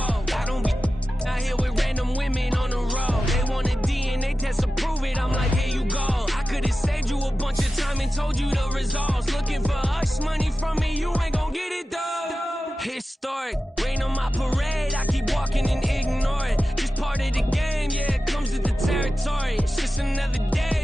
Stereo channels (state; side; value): normal; both; correlation 0.94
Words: I don't be out here with random women on the road. They want a DNA test to prove it, I'm like, here you go. I could've saved you a bunch of time and told you the results. Looking for hush money from me, you ain't gon' get it though. Historic, rain on my parade, I keep walking and ignore it. Just part of the game, yeah, it comes with the territory. It's just another